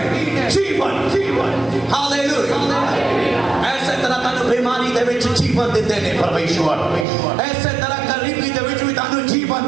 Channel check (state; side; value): drops out; left; at 7.1 s